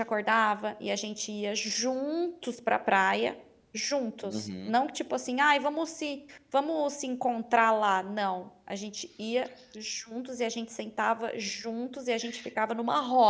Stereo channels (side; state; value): both; identical; correlation 1.00